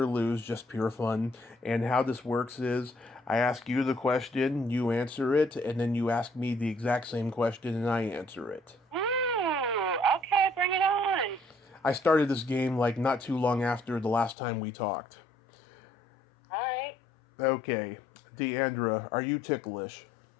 lose, just pure fun. And how this works is I ask you the question, you answer it, and then you ask me the exact same question and I answer it. Okay, bring it on. I started this game not too long after the last time we talked. All right. Okay. Diandra, are you ticklish?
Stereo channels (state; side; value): drops out; right; at 14.4 s